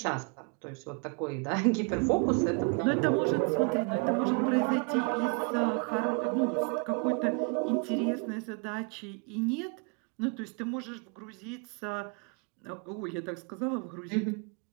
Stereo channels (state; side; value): quieter; left; 35.7 dB